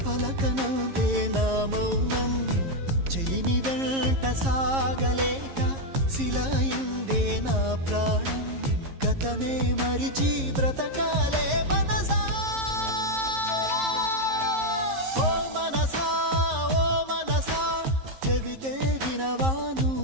పలకనందే నా మౌనం చెలిమి వెంట సాగలేక శిలయిందే నా ప్రాణం గతమే మరిచి బ్రతకాలే మనసా ఓ మనసా చెబితే వినవా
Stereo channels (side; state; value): left; late; 11 ms